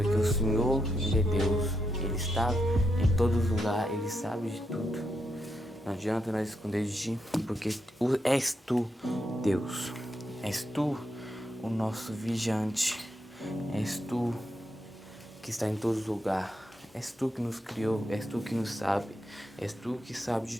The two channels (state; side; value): normal; both; correlation 0.82